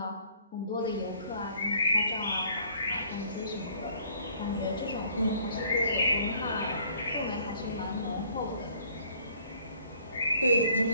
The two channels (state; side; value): inverted; both; correlation -0.60